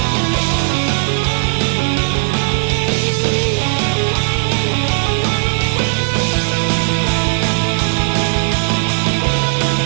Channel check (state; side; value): silent; left; digital silence